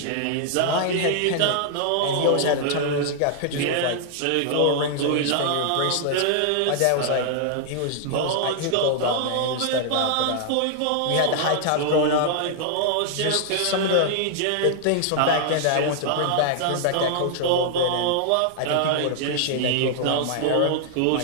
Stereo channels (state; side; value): different; both; correlation -0.01